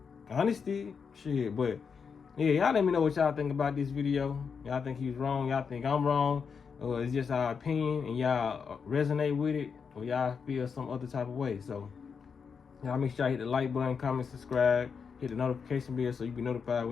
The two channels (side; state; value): right; quieter; 6.0 dB